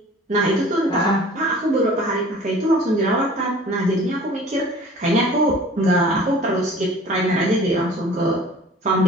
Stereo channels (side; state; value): both; normal; correlation 0.47